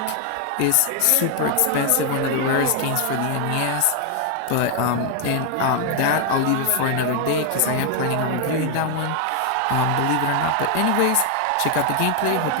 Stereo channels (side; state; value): both; different; correlation 0.00